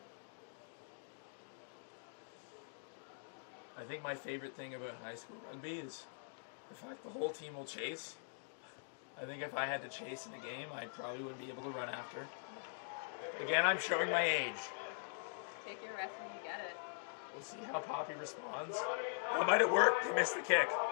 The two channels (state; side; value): silent; right; digital silence